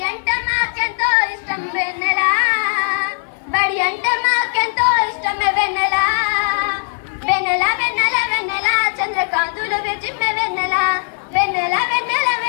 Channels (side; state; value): right; silent; 56 dB below the other